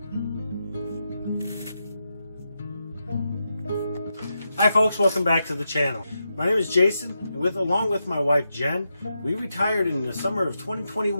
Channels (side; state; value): both; inverted; correlation -0.86